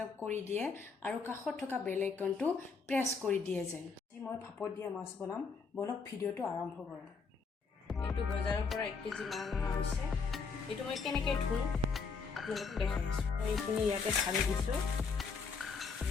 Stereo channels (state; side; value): quieter; right; 5.0 dB